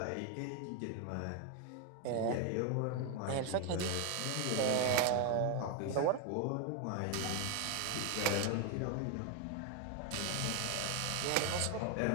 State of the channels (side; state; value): both; different; correlation 0.01